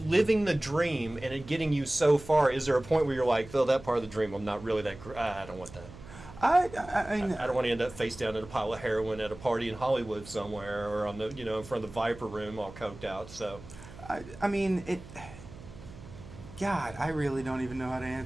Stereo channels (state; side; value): noise; right; hum, 17 dB below the sound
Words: the dream and it getting you so far, is there a point where you're like, oh, that part of the dream, I'm not really that, I don't want that. I mean, I don't want to end up face down in a pile of heroin at a party in Hollywood somewhere, or on the in front of the Viper Room, all coked out. So, I mean it. God, I really don't even know how to